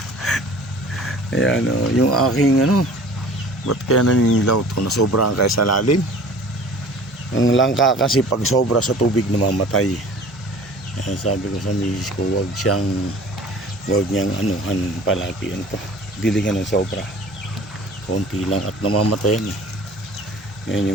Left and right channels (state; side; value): normal; both; correlation 0.46